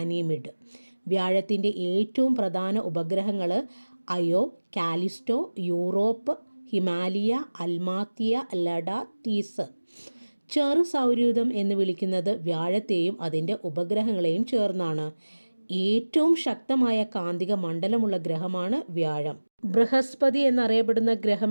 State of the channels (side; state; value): both; inverted; correlation -1.00